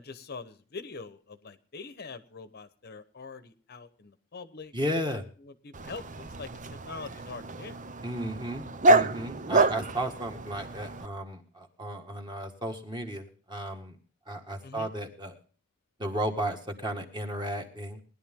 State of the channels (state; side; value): normal; both; correlation -0.12